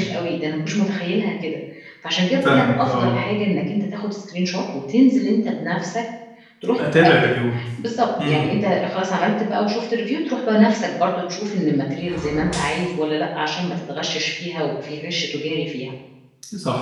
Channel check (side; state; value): both; identical; correlation 1.00